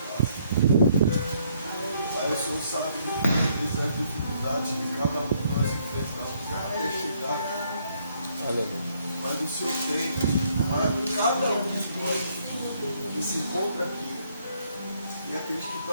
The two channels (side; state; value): both; inverted; correlation -0.69